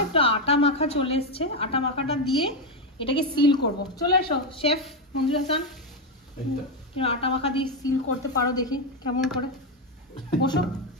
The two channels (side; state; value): both; normal; correlation 0.07